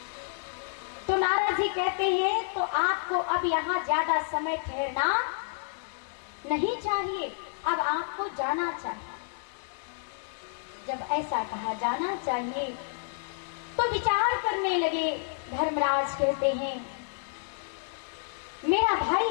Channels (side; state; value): right; silent; 58 dB below the other